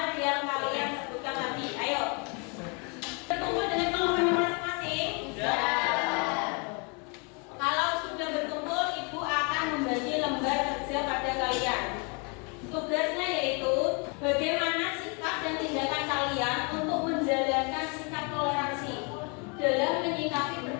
yang kalian sebutkan tadi. Ayo, berkumpul dengan kelompoknya masing-masing. Kalau sudah berkumpul, ibu akan membagi lembar kerja pada kalian. Tugasnya yaitu bagaimana sikap dan tindakan kalian untuk menjalankan sikap toleransi dalam menyikapi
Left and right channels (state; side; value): quieter; right; 33.9 dB